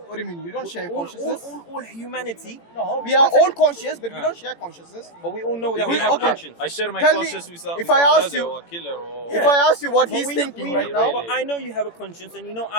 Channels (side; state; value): right; late; 18 ms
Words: What do you mean? You don't share All consciousness? all humanity. No, we are all conscious, but we don't share consciousness. But we all know that we We- have okay. conscience. I share my Tell me, conscience with if with I a ask murderer you- or a killer or... If I ask you what But he's we know- thinking we right know- now, but I know you have a conscience, and you know